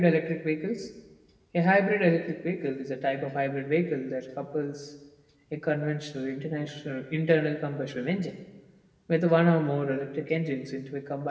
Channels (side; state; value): both; identical; correlation 1.00